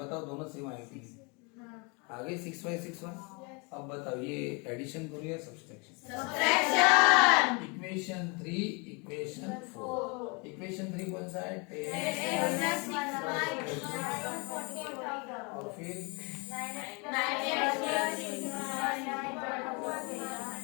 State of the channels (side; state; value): right; quieter; 31.2 dB